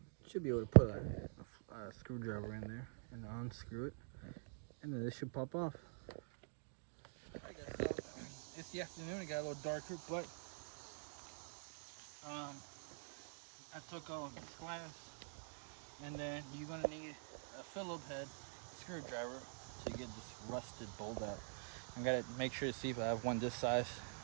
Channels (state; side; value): silent; left; digital silence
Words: Should be able to put a screwdriver in there and unscrew it, and then this should pop off. It's the afternoon. It got a little darker, but I took all of this glass, and then you're gonna need a Phillips head screwdriver to get this rusted bolt out. I gotta make sure to see if I have one this size,